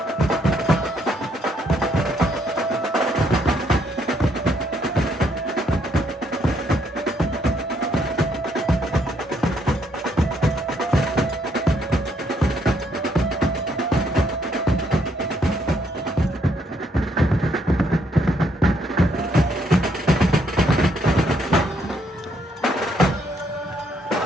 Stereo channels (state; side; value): normal; both; correlation 0.71